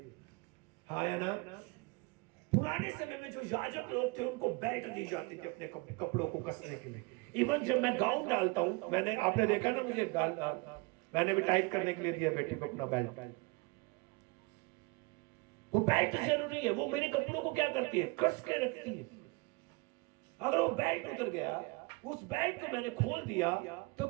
हाँ या ना? पुराने समय में जो याजक लोग थे उनको बेल्ट दी जाती थी अपने कपड़ों को कसने के लिए। इवन जब मैं गाउन डालता हूं, आपने देखा ना मुझे मैंने भी टाइट करने के लिए दिया बेटी को अपना बेल्ट। वो बेल्ट जरूरी है, वो मेरे कपड़ों को क्या करती है? कस के रखती है। अगर वो बेल्ट उतर गया, उस बेल्ट को मैंने खोल दिया, तो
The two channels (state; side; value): quieter; left; 26.9 dB